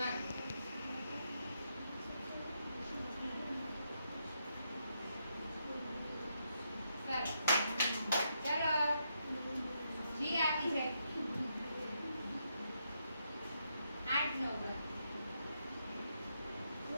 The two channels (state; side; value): inverted; both; correlation -0.80